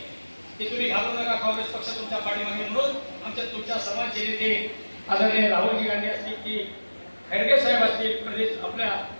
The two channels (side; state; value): both; inverted; correlation -1.00